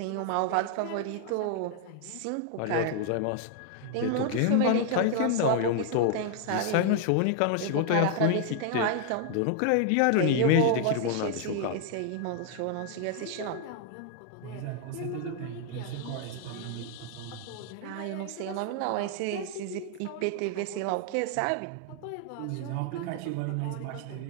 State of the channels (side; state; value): both; different; correlation 0.00